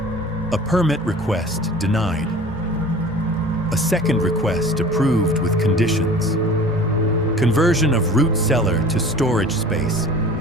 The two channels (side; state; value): both; normal; correlation 0.43